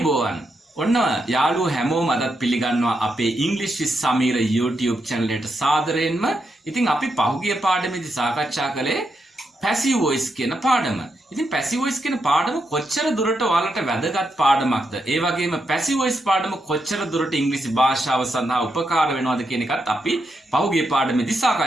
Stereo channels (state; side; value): normal; both; correlation 0.83